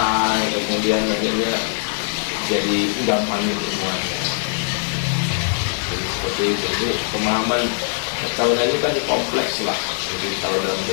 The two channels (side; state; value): right; silent; digital silence